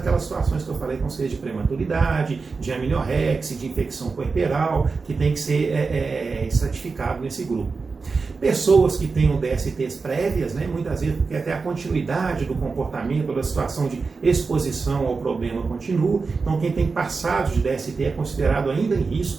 situações que eu falei, com seja de prematuridade, de amniorexia, de infecção puerperal, que tem que ser estratificado nesse grupo. Pessoas que tenham DSTs prévias, né, muitas vezes porque até a continuidade do comportamento, da situação de exposição ao problema continua. Então, quem tem passado de DST é considerado ainda em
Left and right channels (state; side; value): quieter; left; 4.5 dB